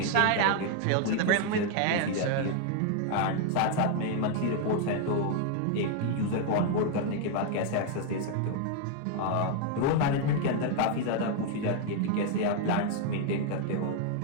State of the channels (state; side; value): different; both; correlation 0.00